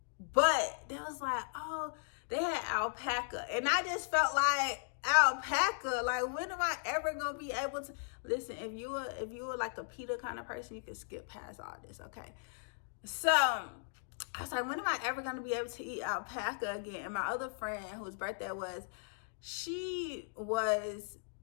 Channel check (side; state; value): right; silent; digital silence